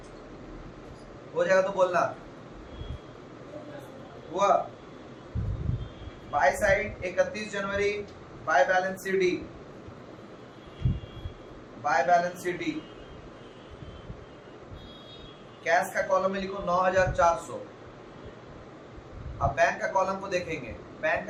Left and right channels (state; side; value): identical; both; correlation 1.00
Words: हो जाएगा तो बोलना। हुआ? बाय साइड 31 जनवरी by balance CD, bye balance CD. Cash का कॉलम में लिखो 9,400। अब बैंक का कॉलम को देखेंगे, बैंक